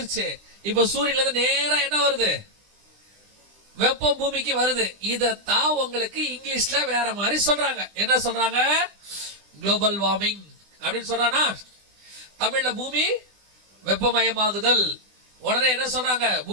இப்போ சூரியன்ல இருந்து நேரா என்ன வருது? வெப்பம் பூமிக்கு வருது. இதத்தான் உங்களுக்கு இங்கிலீஷ்ல வேற மாதிரி சொல்றாங்க. என்ன சொல்றாங்க? குளோபல் வார்மிங் அப்படின்னு சொல்றானா? தமிழ்ல பூமி வெப்பமயமாகுதல். உடனே என்ன சொல்றாங்க?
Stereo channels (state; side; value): late; left; 20 ms